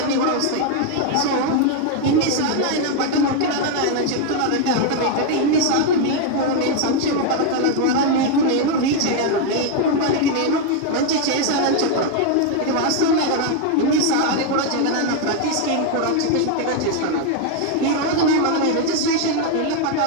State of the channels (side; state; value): both; different; correlation 0.01